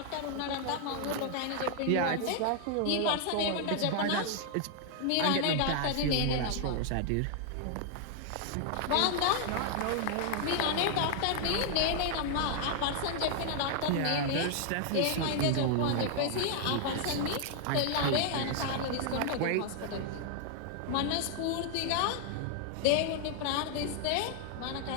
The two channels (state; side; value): different; both; correlation 0.00